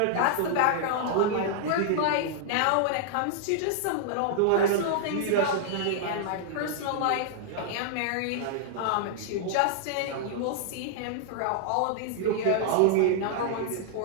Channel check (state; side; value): different; both; correlation -0.01